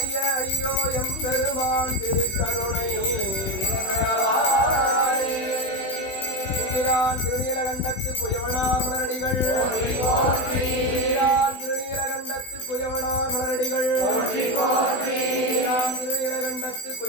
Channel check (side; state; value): right; late; 16 ms